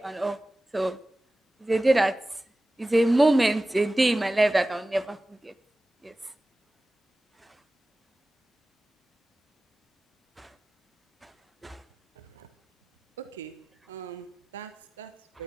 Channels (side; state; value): both; normal; correlation 0.96